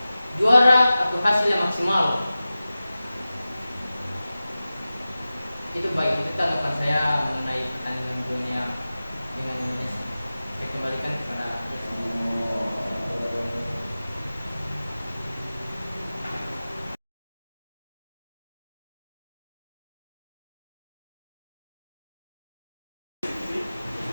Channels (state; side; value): inverted; both; correlation -0.96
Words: juara atau hasil yang maksimal. Itu baik, itu tanggapan saya mengenai pertandingan dunia dengan Indonesia. Saya kembalikan kepada